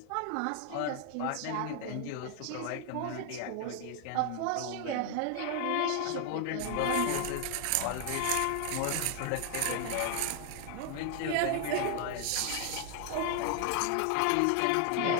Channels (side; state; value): both; different; correlation 0.00